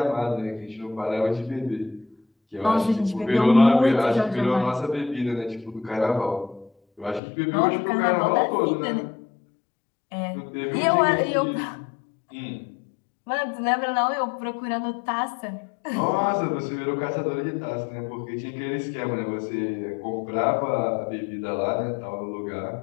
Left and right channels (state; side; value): drops out; right; at 7.2 s